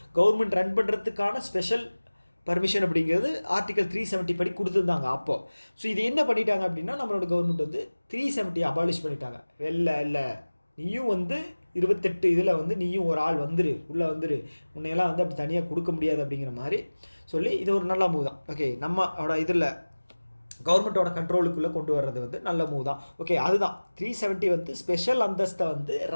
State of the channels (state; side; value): inverted; both; correlation -1.00